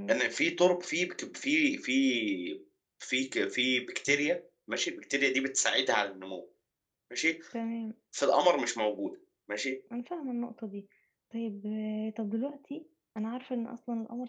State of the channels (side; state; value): both; identical; correlation 1.00